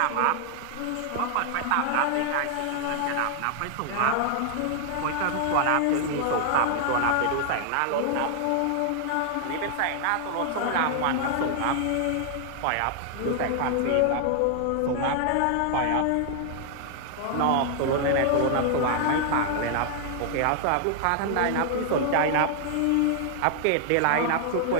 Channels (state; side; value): different; both; correlation 0.00